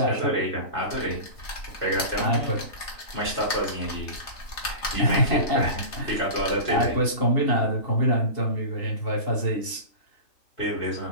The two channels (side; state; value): right; late; 3.3 ms